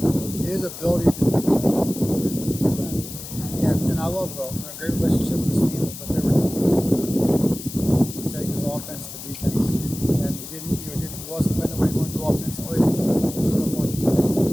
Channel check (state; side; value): noise; left; hiss, 11 dB below the sound